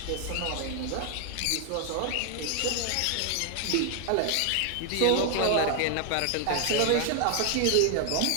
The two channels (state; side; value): different; both; correlation 0.00